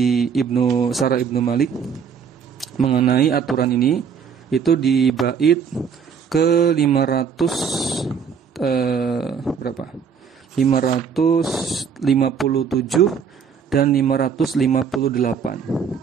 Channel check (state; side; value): quieter; left; 6.7 dB